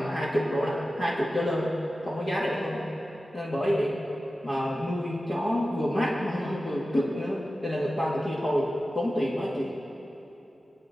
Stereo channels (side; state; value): both; normal; correlation 0.94